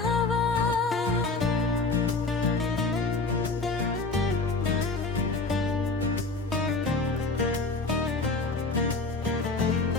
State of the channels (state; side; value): quieter; right; 3.7 dB